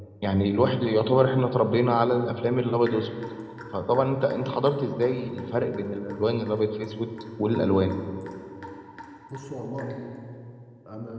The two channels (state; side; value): identical; both; correlation 1.00